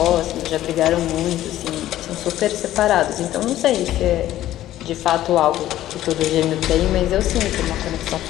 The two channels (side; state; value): right; quieter; 13.6 dB